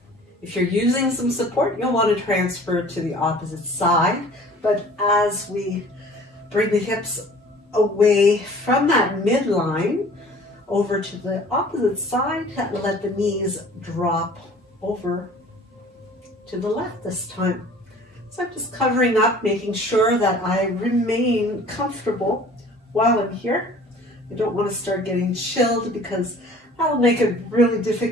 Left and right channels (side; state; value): both; normal; correlation 0.49